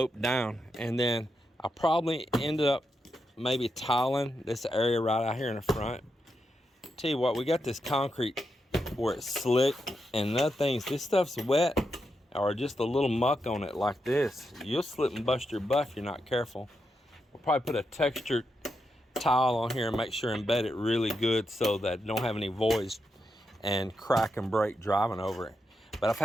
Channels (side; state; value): both; normal; correlation 0.85